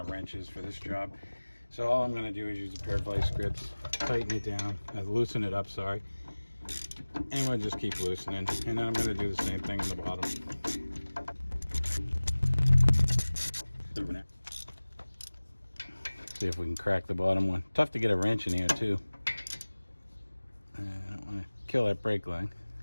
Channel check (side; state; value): both; inverted; correlation -1.00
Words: wrenches for this job. So all I'm gonna do is use a pair of vice grips, tighten it down, loosen it up, sorry. And we'll just keep loosening. And then I'm gonna do the same thing on the bottom. See if we can crack the bottom one. Tough to get a wrench in here too. I don't want to kill that brake line.